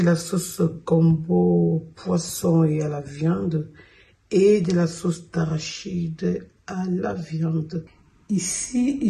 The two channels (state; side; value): identical; both; correlation 1.00